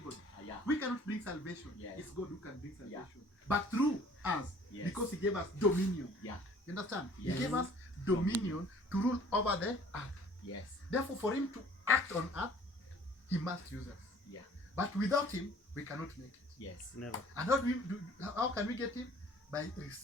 Yeah. We cannot bring salvation. Yes. It's God who can bring salvation. Yeah. But through us, Yes. because He gave us dominion. Yeah. You understand? Yes. He gave us dominion to rule over the earth. Yes. Therefore, for Him to act on earth, He must use us. Yeah. But without Him, we cannot make it. Yes. Never. And how can we get Him? By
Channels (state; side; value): normal; both; correlation 0.53